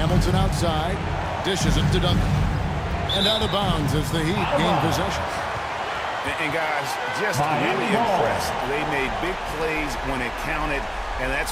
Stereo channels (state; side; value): identical; both; correlation 1.00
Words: outside. Dishes it to Duncan. And out of bounds as the Heat gain possession. And guys, just really impressed. They made big plays when it counted, and